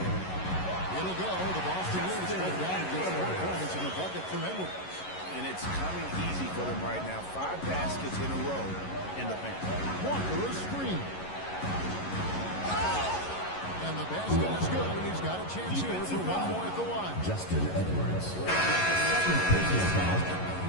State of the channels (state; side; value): late; right; 11 ms